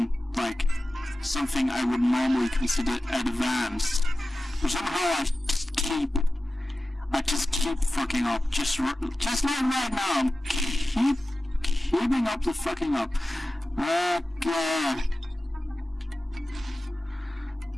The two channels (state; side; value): normal; both; correlation 0.95